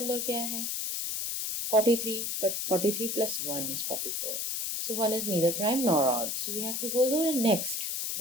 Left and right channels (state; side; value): noise; left; hiss, 2 dB below the sound